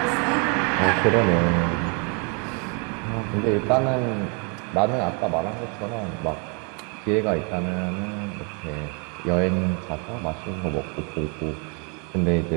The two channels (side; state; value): left; quieter; 35.5 dB